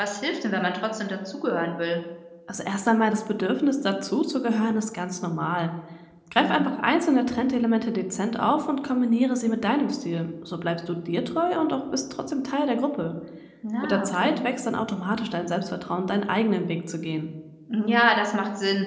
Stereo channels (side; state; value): both; identical; correlation 1.00